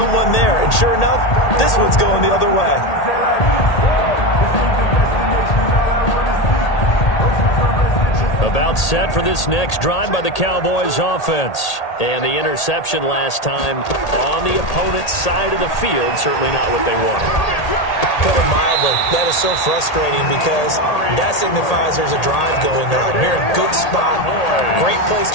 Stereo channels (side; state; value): right; late; 1.8 ms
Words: there. And sure enough, this one's going the other way. About set for this next drive by the Cowboys offense. And the interception last time on the opponent's side of the field, certainly not what they wanted. Put it mildly, that is so frustrating because that signifies there's a drive going on. You're in a good spot, great place